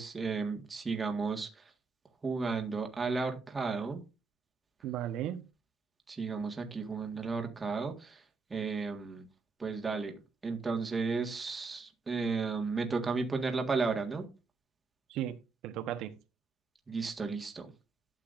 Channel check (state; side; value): quieter; left; 4.5 dB